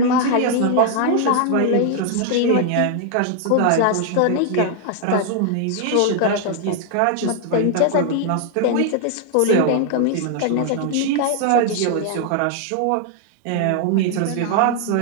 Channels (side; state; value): both; different; correlation 0.00